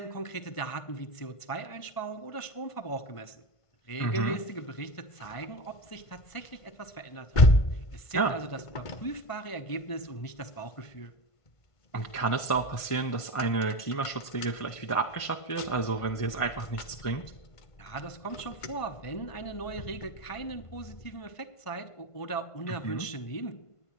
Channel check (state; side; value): late; right; 1.5 ms